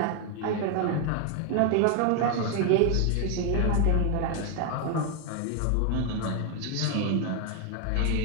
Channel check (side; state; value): both; different; correlation 0.01